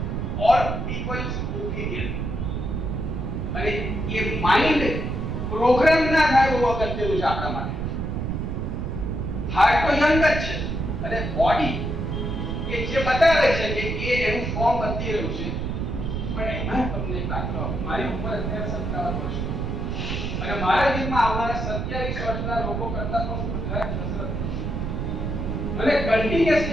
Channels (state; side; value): noise; right; rumble, 2 dB below the sound